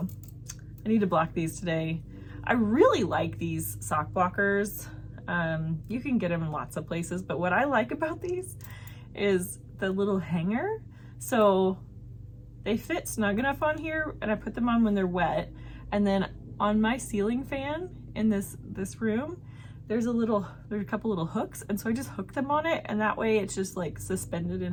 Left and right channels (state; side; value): identical; both; correlation 1.00